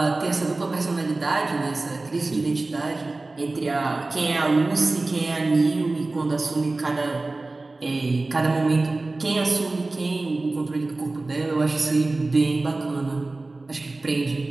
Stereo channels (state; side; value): quieter; left; 3.2 dB